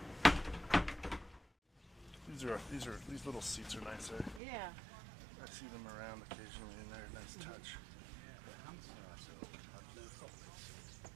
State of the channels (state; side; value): drops out; left; at 4.4 s